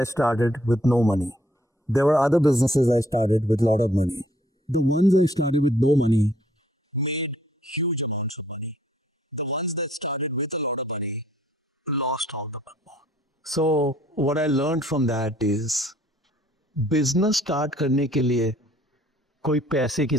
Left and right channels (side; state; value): both; normal; correlation 0.63